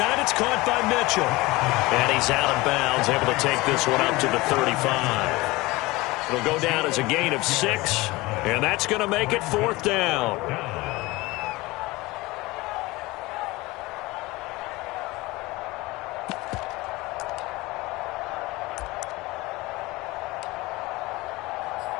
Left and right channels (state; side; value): quieter; right; 21.3 dB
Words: it's caught by Mitchell. And he's out of bounds, able to take this one up to the 35. It'll go down as a gain of 6, and that's going to make it 4th down.